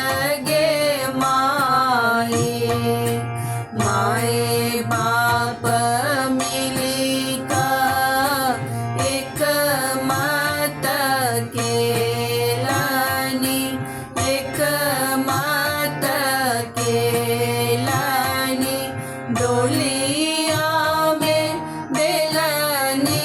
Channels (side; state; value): both; identical; correlation 1.00